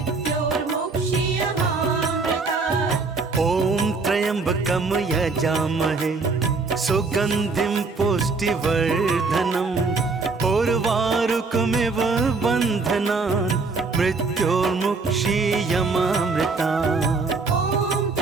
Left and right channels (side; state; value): left; quieter; 4.1 dB